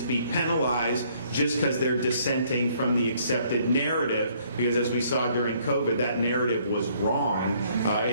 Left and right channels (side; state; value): both; inverted; correlation -0.64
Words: be penalized just because they're dissenting from the accepted narrative, because as we saw during COVID, that narrative was wrong,